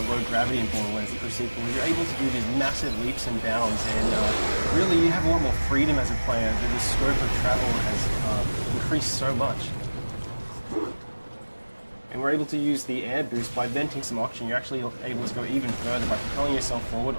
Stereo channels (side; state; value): both; inverted; correlation -1.00